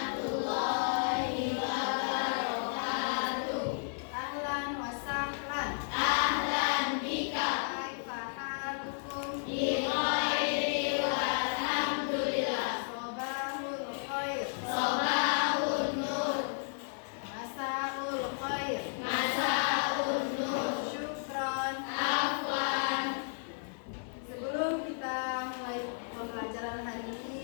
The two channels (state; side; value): silent; right; 56 dB below the other